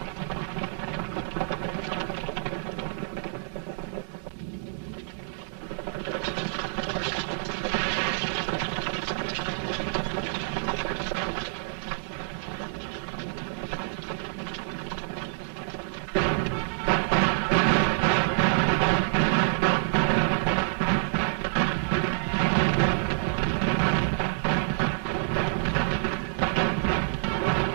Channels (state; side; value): silent; left; digital silence